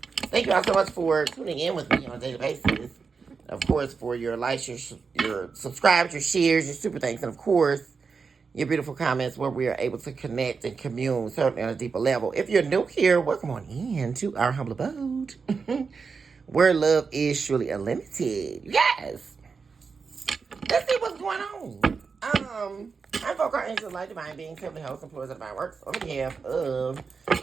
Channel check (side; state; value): left; quieter; 5.2 dB